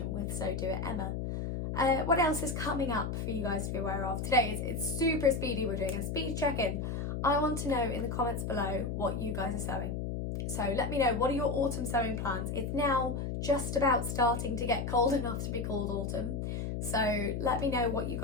with So Do It Emma. What else is coming up for you guys to be aware of? Today it's super speedy, we're doing a speed check-in. I want to know in the comments below what you guys are sewing. So let me know, what are your autumn sewing plans? It's now just about starting to get cold enough to be called autumn. So let me know what you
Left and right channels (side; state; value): left; noise; hum, 3 dB below the sound